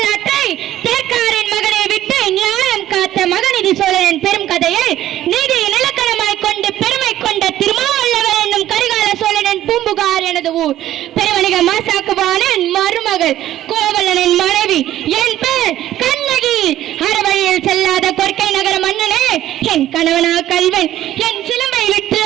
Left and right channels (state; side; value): quieter; left; 13.2 dB